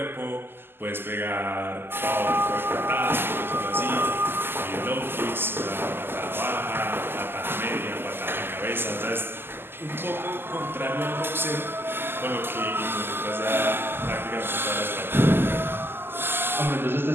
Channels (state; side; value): late; left; 0.11 ms